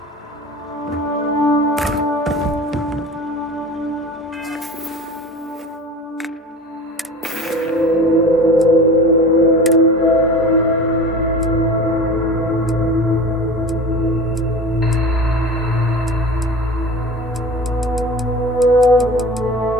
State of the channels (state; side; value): normal; both; correlation 0.36